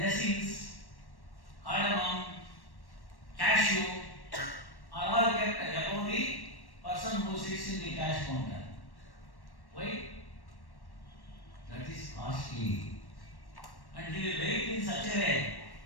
resins, cardamom, cashew are all kept above the person who sits in the cash counter. Why? That is costly. And he will wait in such a way.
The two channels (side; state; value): right; late; 1.1 ms